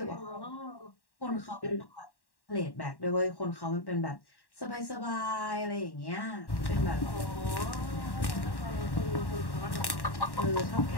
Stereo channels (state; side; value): late; right; 1.1 ms